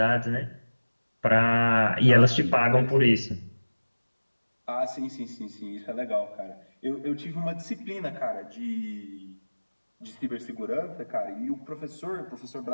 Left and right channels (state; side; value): inverted; both; correlation -1.00